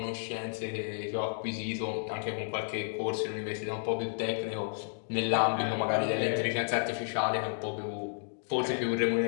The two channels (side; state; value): right; silent; digital silence